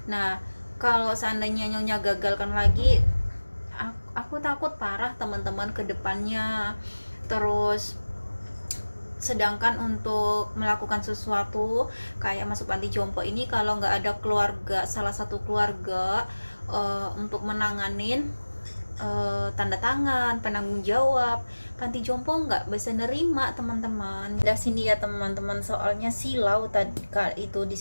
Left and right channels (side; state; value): both; inverted; correlation -1.00